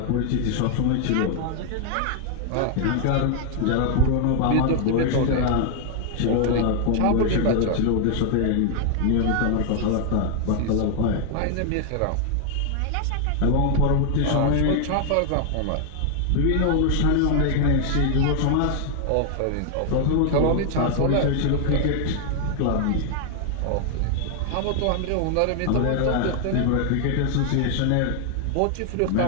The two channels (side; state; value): both; different; correlation 0.00